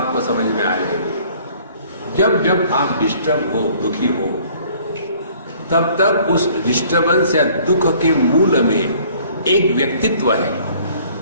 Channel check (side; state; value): both; inverted; correlation -0.56